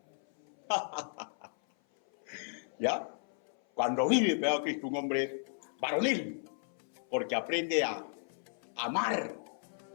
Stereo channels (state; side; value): silent; right; 55 dB below the other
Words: ¿Ya? Cuando vive pegado a Cristo, un hombre es varonil, porque aprende a amar